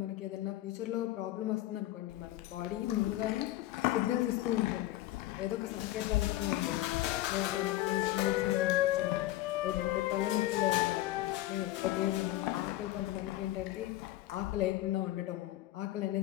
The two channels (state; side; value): quieter; right; 15.7 dB